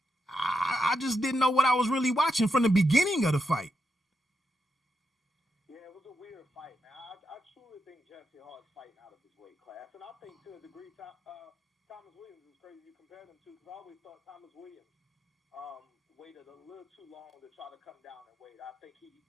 just didn't know what I was really watching from the beginning of the fight. Yeah, it was a weird fight, man. I truly think Jesse Hart's fighting out of his weight class, and I think to a degree Thomas Williams is crazy. You compare them to, because I always thought Thomas Williams waited a little too long to try to come down in weight. I think he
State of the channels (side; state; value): both; normal; correlation 0.84